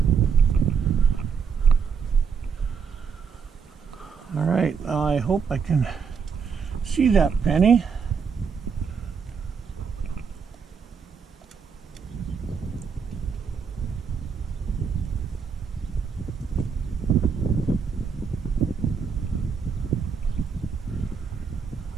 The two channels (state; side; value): quieter; left; 6.1 dB